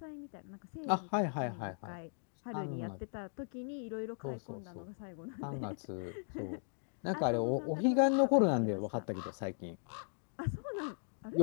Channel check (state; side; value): silent; right; digital silence